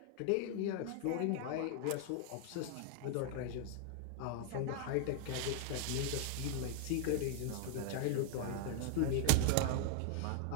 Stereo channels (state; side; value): different; both; correlation 0.00